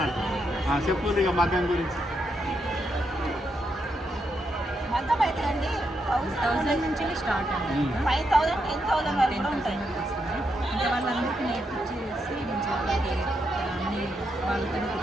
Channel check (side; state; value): both; normal; correlation 0.81